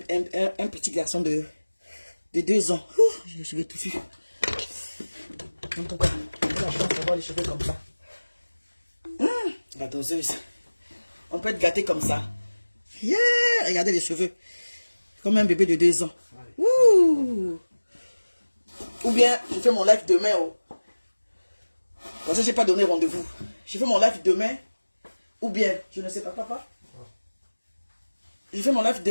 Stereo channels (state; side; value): inverted; both; correlation -1.00